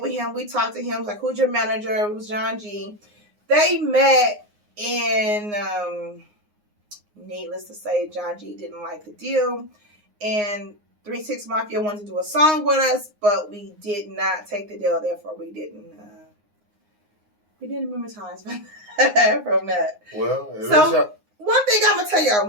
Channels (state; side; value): late; left; 9.6 ms